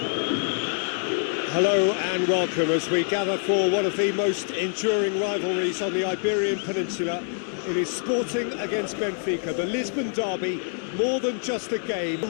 Hello and welcome as we gather for one of the most enduring rivalries on the Iberian Peninsula. It is Sporting against Benfica, the Lisbon derby, more than just a game.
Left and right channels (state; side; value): silent; right; 57 dB below the other